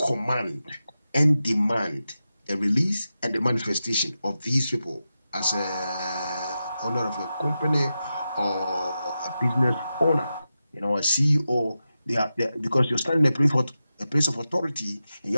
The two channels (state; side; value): inverted; both; correlation -0.91